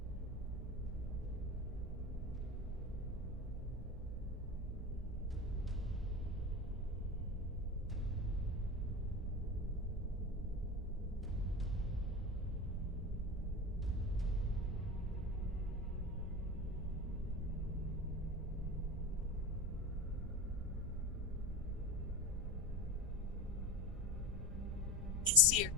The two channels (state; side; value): normal; both; correlation 0.25